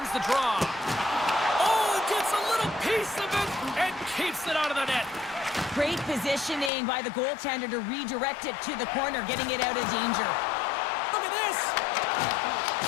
the draw. Oh, gets a little piece of it and keeps it out of the net. Great positioning by the goaltender to redirect it to the corner, getting it out of danger. Look at this.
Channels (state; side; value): drops out; right; at 6.7 s